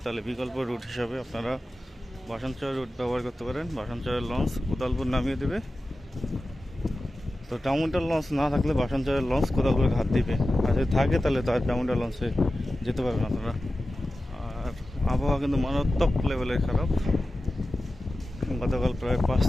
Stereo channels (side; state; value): both; normal; correlation 0.94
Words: তাহলে বিকল্প রুট হিসাবে আপনারা ভাসানচর রুট ব্যবহার করতে পারেন। ভাসানচরের লঞ্চ কোদালপুর নামিয়ে দেবে। তো ডাউনটাউন লঞ্চ না থাকলে ভাসানচরের লঞ্চ কোদালপুর ঘাট দিবে, আর যদি থাকে তাহলে তার ডাউনটাউন লঞ্চে যেতে পারবেন আপনারা। আর আবহাওয়া কিন্তু মারাত্মক লেভেলের খারাপ। গতকাল প্রায়